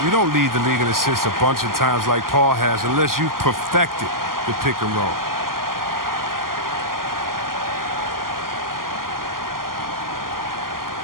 You don't lead the league in assists a bunch of times like Paul has unless you've perfected the pick and roll.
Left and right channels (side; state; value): left; late; 0.91 ms